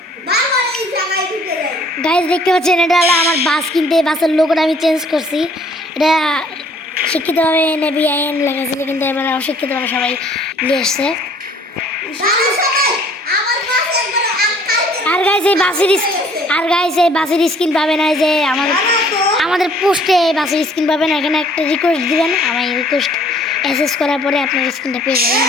গাইজ দেখতে পাচ্ছেন এটা হলো আমার বাস, কিনতে বাসের লোগোটা আমি চেঞ্জ করছি। এটা শিক্ষিতভাবে নেভি আইন লেখা ছিল, কিন্তু এবার অশিক্ষিতভাবে সবাই নিয়ে এসছে। আর গাইজ এই বাসের স্ক্রিন পাবেন না, যে আমাদের পোস্টে বাসের স্ক্রিন পাবেন। এখানে একটা রিকোয়েস্ট দিবেন, আমার রিকোয়েস্ট অ্যাক্সেস করার পরে আপনার স্ক্রিনটা পেয়ে যাবেন,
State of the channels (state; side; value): normal; both; correlation 0.58